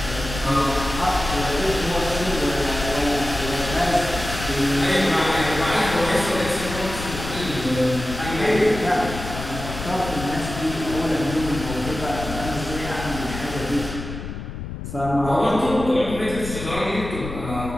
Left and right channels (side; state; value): left; noise; rumble, 8 dB below the sound